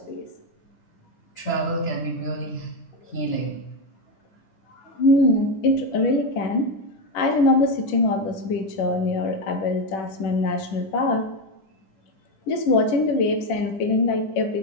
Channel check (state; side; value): late; right; 10 ms